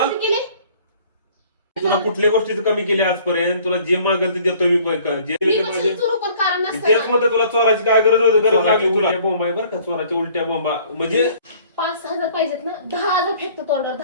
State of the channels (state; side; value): inverted; both; correlation -0.55